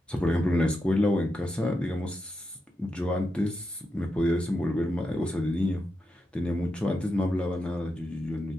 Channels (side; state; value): both; normal; correlation 0.86